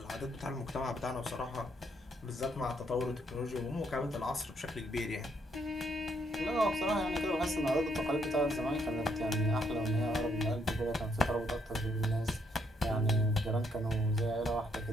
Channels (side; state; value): both; normal; correlation 0.72